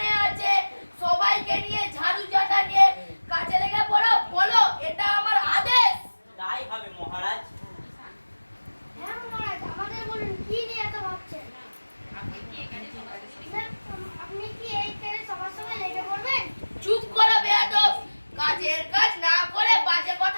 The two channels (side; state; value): both; inverted; correlation -1.00